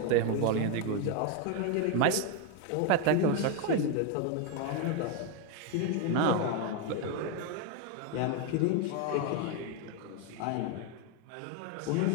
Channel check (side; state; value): both; different; correlation 0.01